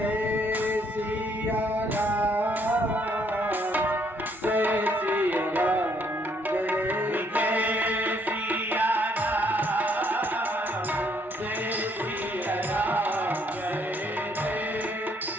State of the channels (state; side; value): normal; both; correlation 0.68